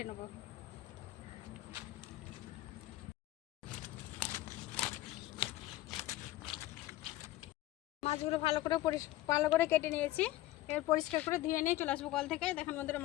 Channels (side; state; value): right; quieter; 15.9 dB